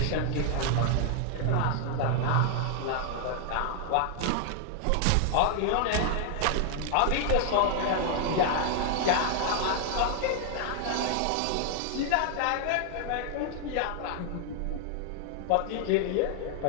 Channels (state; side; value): different; both; correlation 0.00